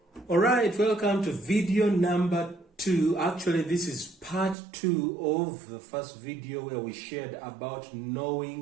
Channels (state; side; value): drops out; left; at 4.5 s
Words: Alright, welcome to video number 2. Actually, this is part 2 of the first video where we shared about